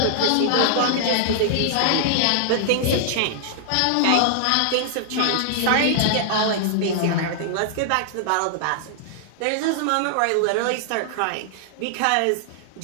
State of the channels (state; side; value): different; both; correlation -0.01